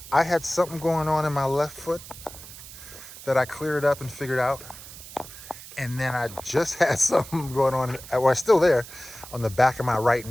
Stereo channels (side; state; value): right; noise; hiss, 15 dB below the sound